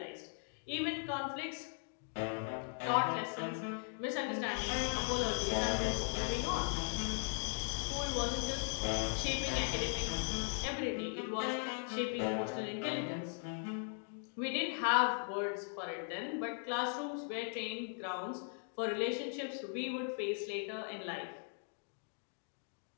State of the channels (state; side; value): silent; right; 52 dB below the other